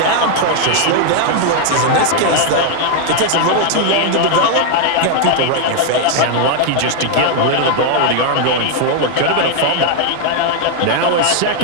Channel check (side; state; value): both; different; correlation 0.00